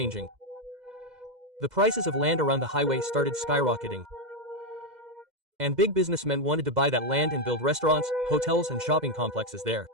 The prices of land around the highway started skyrocketing. And big businessmen wanted to buy that land and build restaurants, hotels and shopping complexes there.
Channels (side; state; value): left; late; 2.1 ms